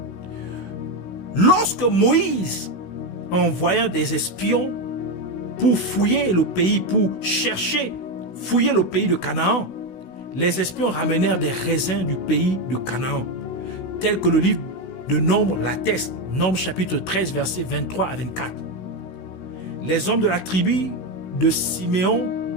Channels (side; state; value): right; late; 16 ms